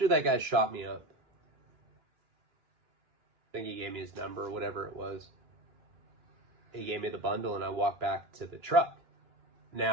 that guy shot me up, I think he gave me his number or whatever it was. He gave me the bundle, and I walked back to the truck.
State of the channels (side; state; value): left; late; 2.9 ms